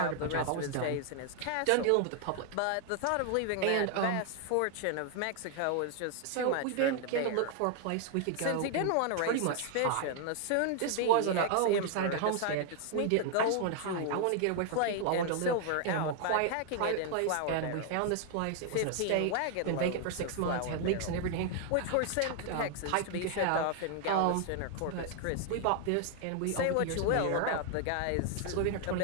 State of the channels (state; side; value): different; both; correlation 0.00